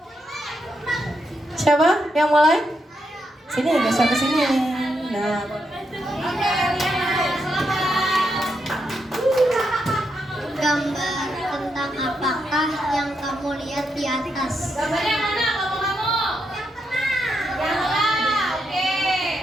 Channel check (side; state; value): both; normal; correlation 0.82